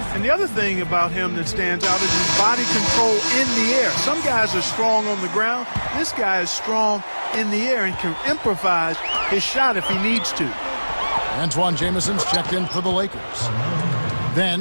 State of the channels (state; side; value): inverted; both; correlation -1.00